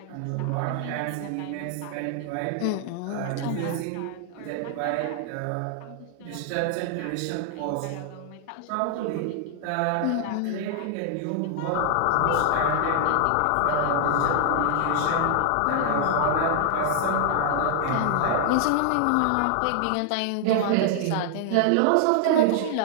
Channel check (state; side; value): different; both; correlation 0.00